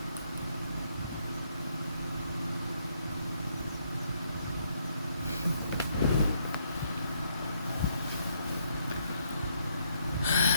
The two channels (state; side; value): inverted; both; correlation -0.72